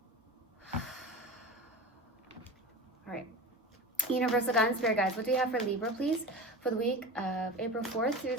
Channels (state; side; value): normal; both; correlation 0.29